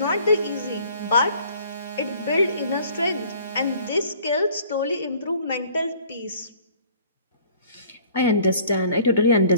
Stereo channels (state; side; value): inverted; both; correlation -0.54